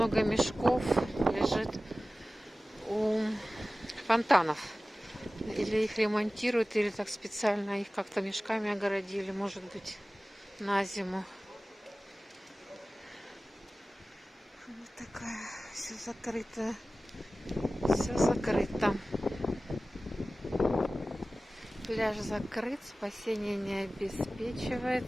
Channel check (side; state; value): both; normal; correlation 0.97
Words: мешков лежит у фонтанов. Или их ремонтируют, или так специально их как-то мешками огородили, может быть, на зиму. Вот такая, все закрыто. Все закрыто. Пляж закрыт, спасение не